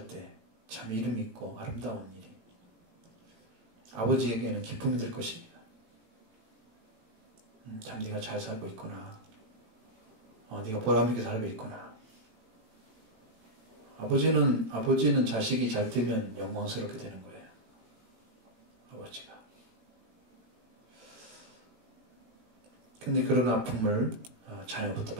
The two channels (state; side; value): late; left; 18 ms